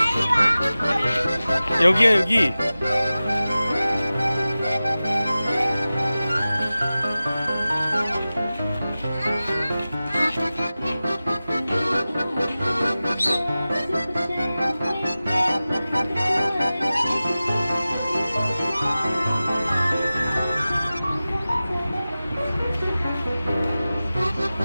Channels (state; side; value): inverted; both; correlation -0.96